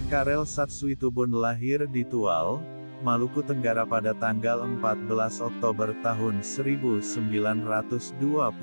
Karel Satsuitubun lahir di Tual, Maluku Tenggara pada tanggal 14 Oktober tahun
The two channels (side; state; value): both; inverted; correlation -1.00